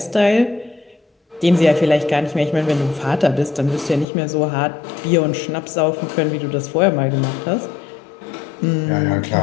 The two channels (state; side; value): drops out; right; at 4.0 s